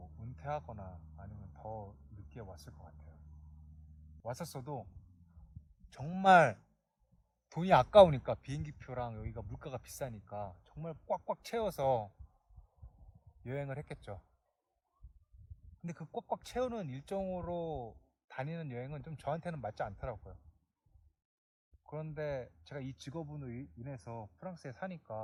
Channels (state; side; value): identical; both; correlation 1.00